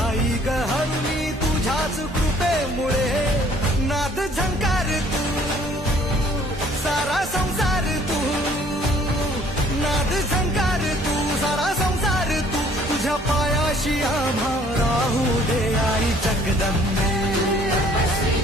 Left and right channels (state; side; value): normal; both; correlation 0.58